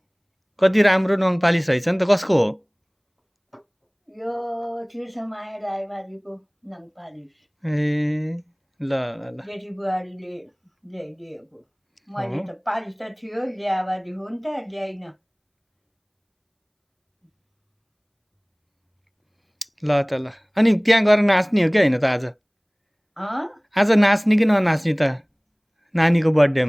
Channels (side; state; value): both; identical; correlation 1.00